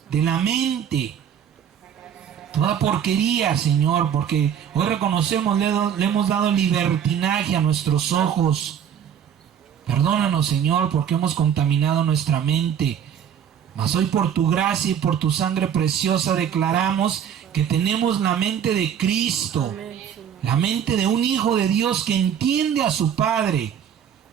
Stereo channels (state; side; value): quieter; left; 8.8 dB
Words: de la mente, toda porquería, Señor, porque hoy reconocemos, le hemos dado libertinaje a nuestros ojos. Perdónanos, Señor, porque hemos contaminado nuestra mente. Mas hoy por tu gracia y por tu sangre preciosa declaramos que tenemos la mente de Cristo, la mente de un hijo de Dios que entiende a su Padre,